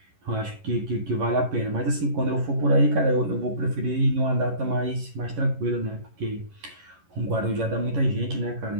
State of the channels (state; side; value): late; left; 11 ms